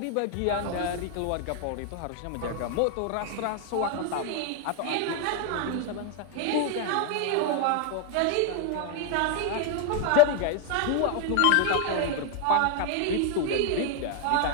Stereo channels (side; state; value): both; different; correlation 0.00